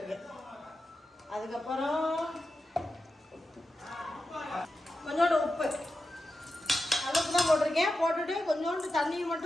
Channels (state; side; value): normal; both; correlation 0.90